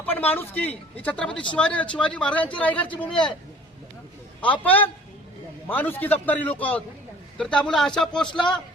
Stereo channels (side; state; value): both; normal; correlation 0.49